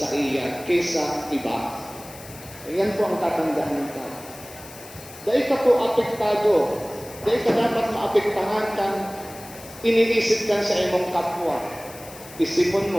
iya kaysa iba. Ayan po ang tatandaan ka. Dahil ka po apektado, dahil ka dapat maapektahan kang iniisip ka sa imong kapwa. Isipon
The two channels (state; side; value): noise; left; hiss, 17 dB below the sound